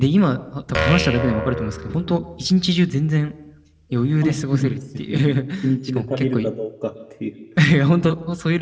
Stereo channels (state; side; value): identical; both; correlation 1.00